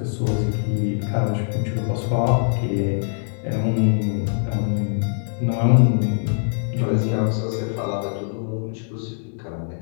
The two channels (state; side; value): silent; right; digital silence